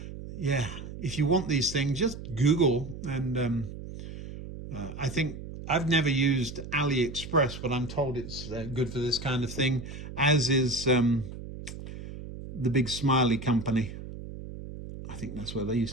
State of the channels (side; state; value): right; noise; hum, 11 dB below the sound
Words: Yeah, if you want these things, just Google. And I think I've never used AliExpress, but I'm told it's good for this kind of thing, as is the big Smiley company. I think that's where these